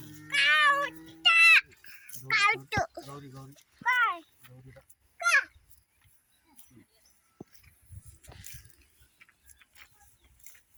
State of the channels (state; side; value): identical; both; correlation 1.00